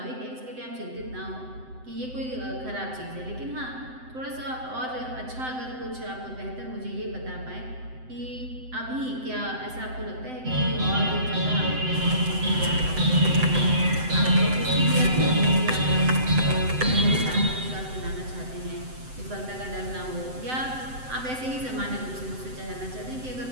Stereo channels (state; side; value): late; left; 7.8 ms